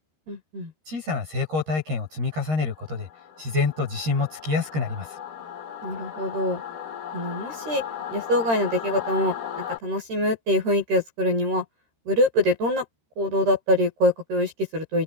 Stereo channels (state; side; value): late; left; 13 ms